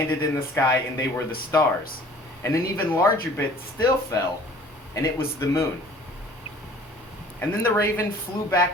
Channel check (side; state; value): both; normal; correlation 0.50